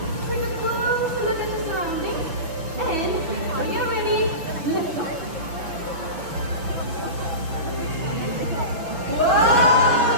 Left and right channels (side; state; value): left; late; 6.1 ms